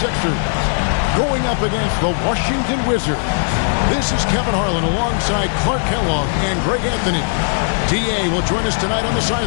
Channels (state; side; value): silent; right; 63 dB below the other